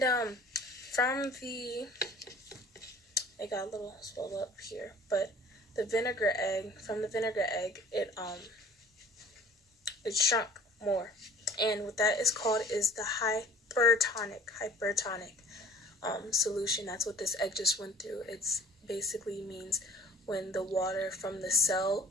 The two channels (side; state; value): both; normal; correlation 0.49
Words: from the, it got a little swelled up here, but the vinegar egg, from the vinegar egg, it shrunk more. And what that is called is the hypertonic solution. That's what this egg just went through. It's basically means when the water from the cell